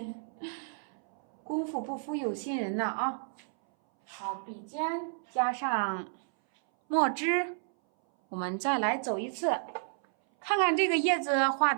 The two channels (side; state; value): left; silent; 57 dB below the other